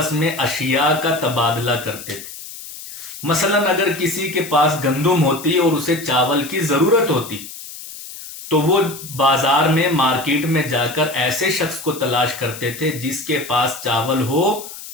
میں اشیاء کا تبادلہ کرتے تھے۔ مثلا اگر کسی کے پاس گندم ہوتی اور اسے چاول کی ضرورت ہوتی تو وہ بازار میں مارکیٹ میں جا کر ایسے شخص کو تلاش کرتے تھے جس کے پاس چاول ہو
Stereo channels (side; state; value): left; noise; hiss, 13 dB below the sound